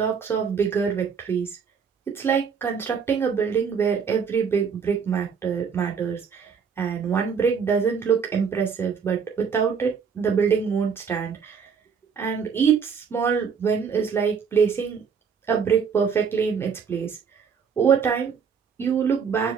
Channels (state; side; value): quieter; left; 6.4 dB